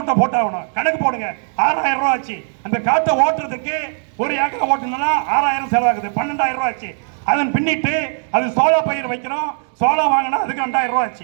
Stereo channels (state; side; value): silent; left; 55 dB below the other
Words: போட்டாகணும். கணக்கு போடுங்க, 6000 ரூபா ஆச்சு. அந்த காட்டை ஓட்டுறதுக்கு ஒரு ஏக்கரை ஓட்டணும்னா 6000 செலவாகுது, 12000 ரூபா ஆச்சு. அதன் பின்னிட்டு அது சோளா பயிர் வைக்கிறோம், சோளா வாங்கினா அதுக்கு 2000 ரூபா